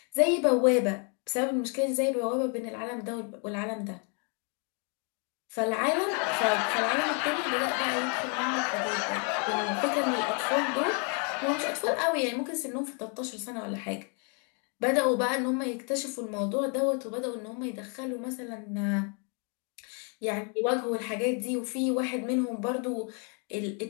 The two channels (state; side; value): quieter; right; 37.9 dB